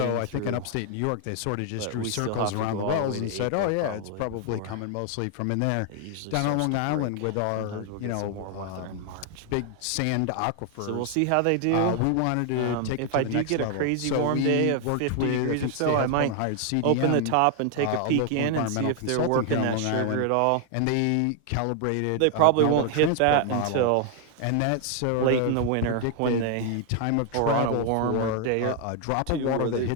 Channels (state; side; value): different; both; correlation 0.00